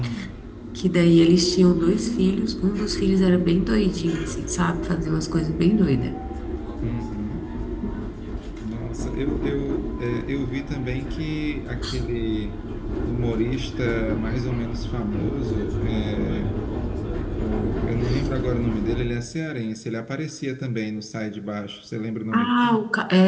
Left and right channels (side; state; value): both; identical; correlation 1.00